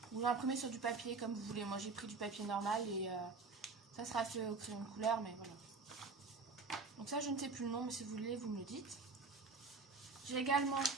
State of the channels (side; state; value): left; quieter; 4.2 dB